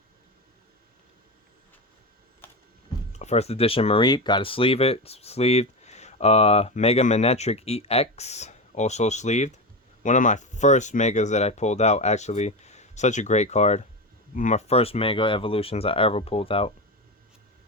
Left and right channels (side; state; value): both; normal; correlation 0.19